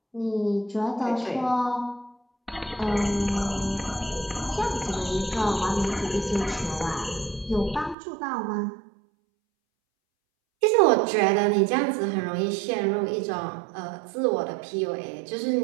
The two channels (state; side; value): drops out; left; at 8.0 s